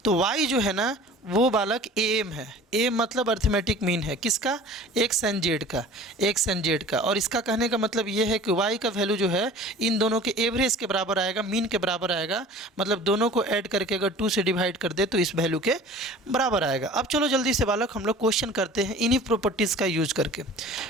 तो y जो है ना वो बालक AM है। AM मतलब अर्थमेटिक मीन है किसका? एक्स एंड जेड का। और इसका कहने का मतलब ये है कि y का वैल्यू जो है इन दोनों के एवरेज के बराबर आएगा, मीन के बराबर आएगा। मतलब दोनों को ऐड करके अगर 2 से डिवाइड कर दे तो इस वैल्यू के बराबर आएगा। अब चलो जल्दी से बालक हम लोग क्वेश्चन करते हैं इन्हीं प्रॉपर्टीज़ का यूज करके,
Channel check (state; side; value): normal; both; correlation 0.43